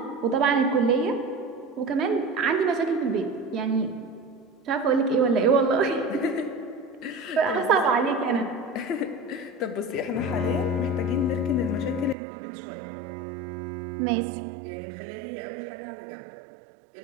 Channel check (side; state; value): left; drops out; at 12.2 s